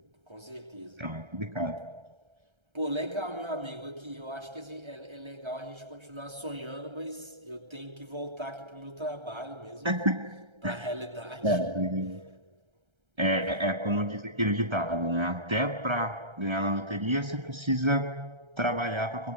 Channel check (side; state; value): left; late; 1.3 ms